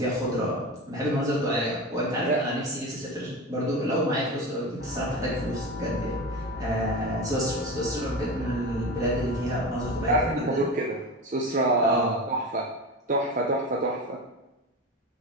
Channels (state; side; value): normal; both; correlation 0.26